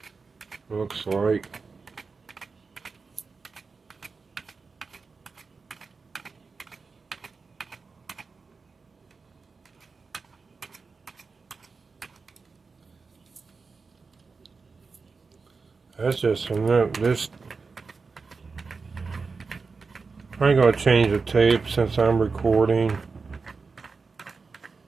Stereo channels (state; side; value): quieter; left; 4.6 dB